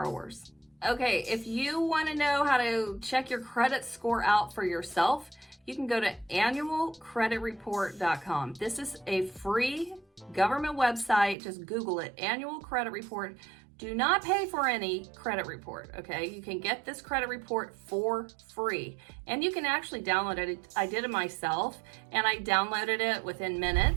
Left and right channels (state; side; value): drops out; left; at 11.4 s